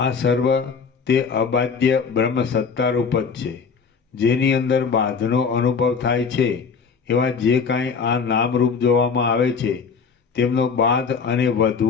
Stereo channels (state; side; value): quieter; right; 5.6 dB